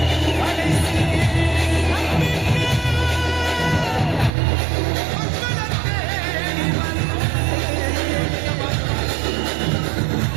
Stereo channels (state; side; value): drops out; left; at 4.3 s